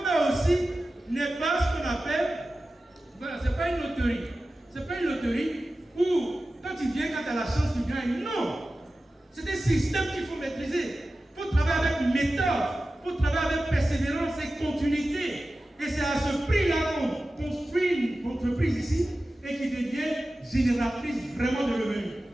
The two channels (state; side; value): normal; both; correlation 0.95